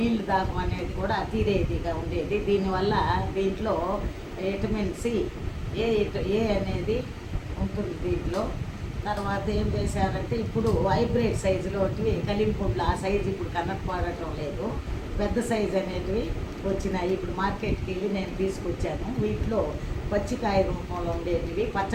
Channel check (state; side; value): identical; both; correlation 1.00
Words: దాహం అనేది కూడా తీరేదిగా ఉండేది. దీనివల్ల దీంట్లో విటమిన్ సి ఏ అనేది ఉంటుంది దీంట్లో. తర్వాత ఏం చేశారంటే ఇప్పుడు హైబ్రిడ్ సైజులో కలింపుండ్లు ఆ సైజు ఇప్పుడు కనపడటం లేదు. పెద్ద సైజు అనేటివి వచ్చినాయి. ఇప్పుడు మార్కెట్కి వెళ్ళి నేను తీసుకొచ్చాను. వీటిలో పచ్చికాయ రూపంలో ఉండేటివి